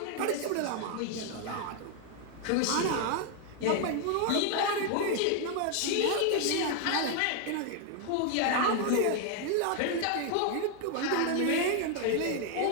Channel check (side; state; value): both; different; correlation 0.01